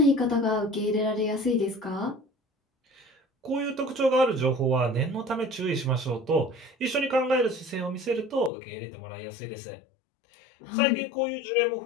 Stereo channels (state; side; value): drops out; right; at 8.5 s